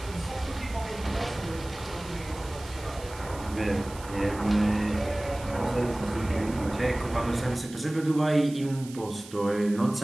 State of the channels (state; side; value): noise; right; hiss, 17 dB below the sound